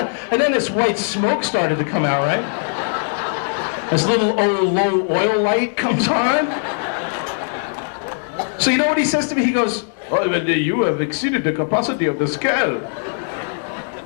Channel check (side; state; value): right; silent; digital silence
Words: And then this white smoke started to come out, right? This little low oil light comes on. So you know what he says to me? He goes, oh, you have exceeded the capacity of the scale.